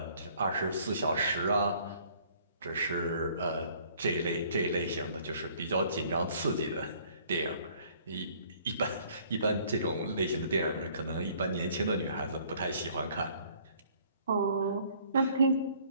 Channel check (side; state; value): both; inverted; correlation -0.59